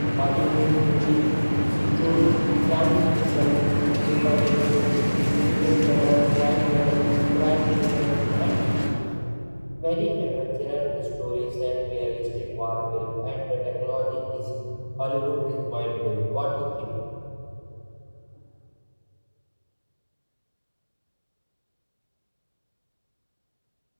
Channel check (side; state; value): both; inverted; correlation -1.00